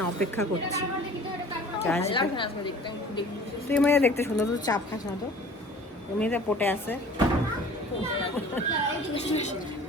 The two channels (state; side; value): normal; both; correlation 0.46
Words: অপেক্ষা করছি, তুই মেয়ে দেখতে সুন্দর, তো চাপ খাস না তো, এমনিতে পটে আছে।